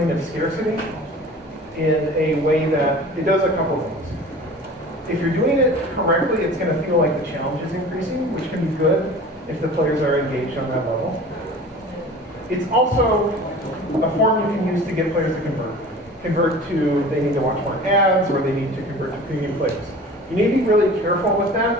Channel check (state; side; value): normal; both; correlation 0.41